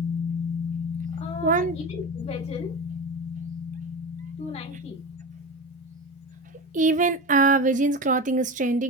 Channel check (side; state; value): both; normal; correlation 0.25